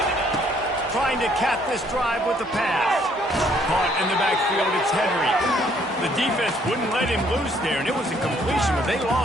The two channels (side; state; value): both; normal; correlation 0.65